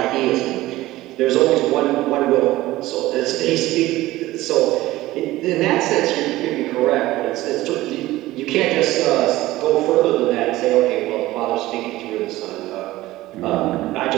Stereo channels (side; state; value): left; quieter; 17.2 dB